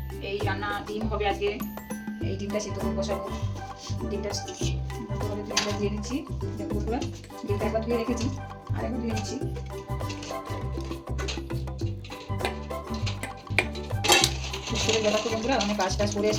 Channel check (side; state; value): both; identical; correlation 1.00